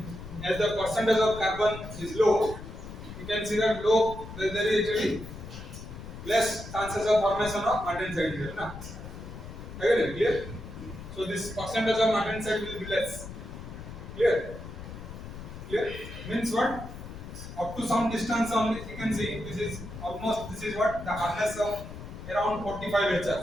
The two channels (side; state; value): left; noise; rumble, 11 dB below the sound